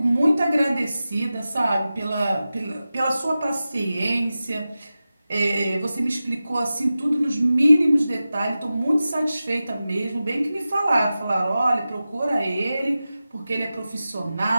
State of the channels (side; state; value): both; inverted; correlation -0.94